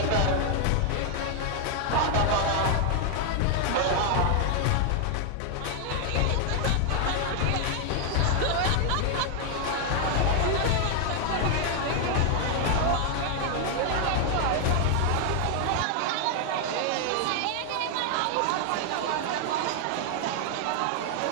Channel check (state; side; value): different; both; correlation 0.00